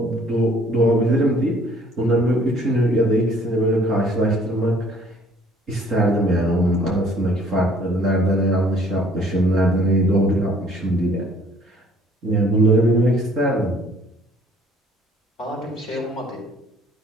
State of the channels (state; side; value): normal; both; correlation 0.58